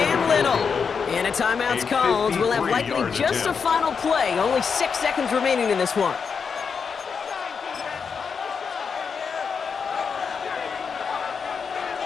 Little. And a timeout's called. We'll have likely just a final play. Only 6 seconds remaining in this one.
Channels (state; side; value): quieter; right; 5.9 dB